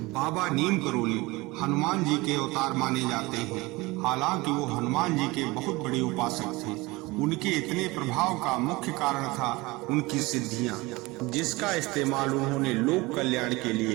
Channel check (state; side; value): quieter; left; 22.4 dB